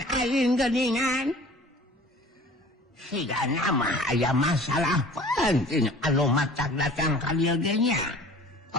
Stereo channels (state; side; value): normal; both; correlation 0.46